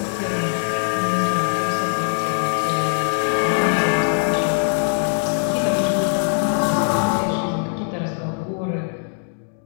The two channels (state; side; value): silent; right; 65 dB below the other